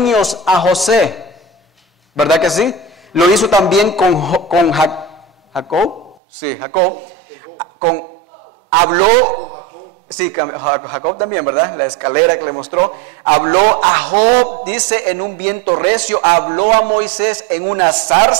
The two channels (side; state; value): left; drops out; at 6.2 s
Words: a José, ¿verdad que sí? Lo hizo también con Jacob, sí, Jacob, habló... Sí, Jacob también, ¿verdad? La escalera que le mostró. Habló a Job, dice, en un viento recio. Habló a Moisés en una